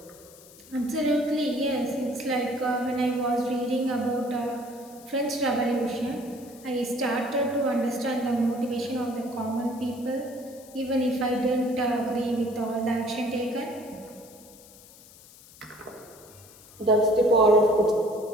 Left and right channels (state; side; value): noise; left; hiss, 22 dB below the sound